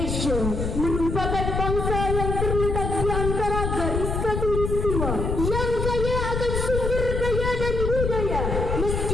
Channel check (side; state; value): left; noise; rumble, 2 dB below the sound